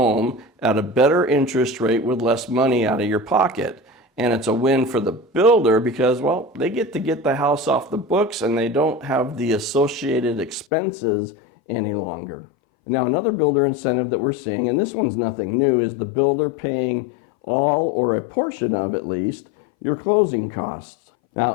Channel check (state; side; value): drops out; right; at 10.7 s